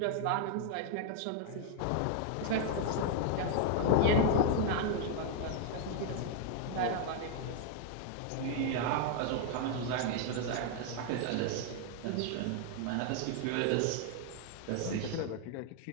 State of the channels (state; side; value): different; both; correlation 0.00